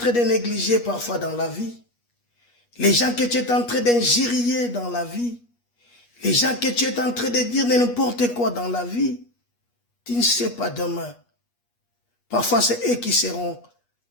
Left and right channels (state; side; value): late; right; 8.3 ms